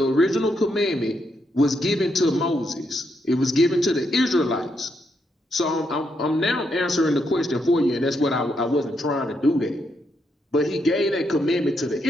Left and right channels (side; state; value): both; normal; correlation 0.79